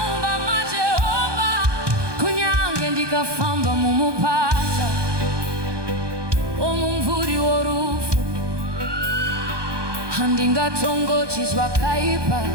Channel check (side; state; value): left; late; 1.2 ms